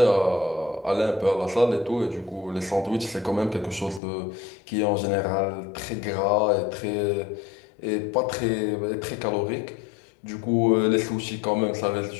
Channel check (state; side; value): drops out; right; at 4.0 s